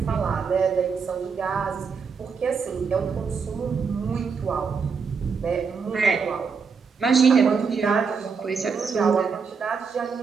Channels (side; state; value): left; quieter; 5.6 dB